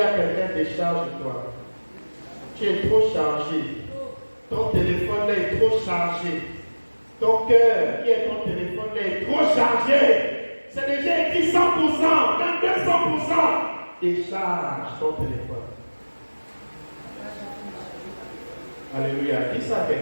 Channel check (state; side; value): inverted; both; correlation -1.00